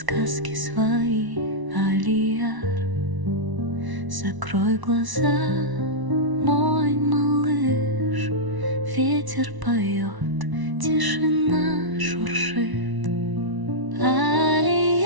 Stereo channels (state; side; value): late; left; 1.0 ms